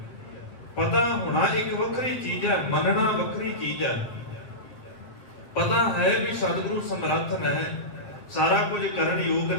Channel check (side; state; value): right; late; 8.3 ms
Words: ਪਤਾ ਹੋਣਾ ਇੱਕ ਵੱਖਰੀ ਚੀਜ਼ ਹੈ, ਮੰਨਣਾ ਵੱਖਰੀ ਚੀਜ਼ ਹੈ। ਪਤਾ ਹੈ ਵੀ ਸਤਿਗੁਰੂ ਸਮਰੱਥ ਹੈ, ਸਾਰਾ ਕੁਝ ਕਰਨ ਯੋਗ